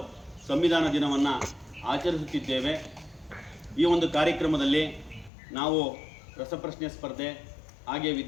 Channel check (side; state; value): right; drops out; at 5.3 s